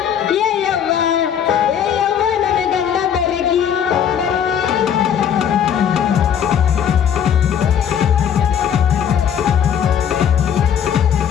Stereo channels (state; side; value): quieter; right; 8.6 dB